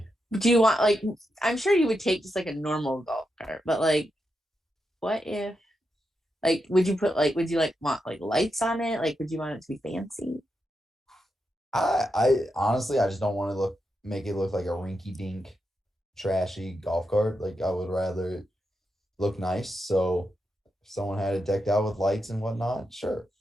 Do you want like I'm sure you would take just like a normal golf cart, but like what if like would you put like would you like want like lights on it? Like would you want it to be fancy? I honestly I just don't want to make it look like a rinky dink trashy golf cart. Like I would rather it look nice. So if someone had it decked out with lights and whatnot, sure.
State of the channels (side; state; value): both; normal; correlation 0.86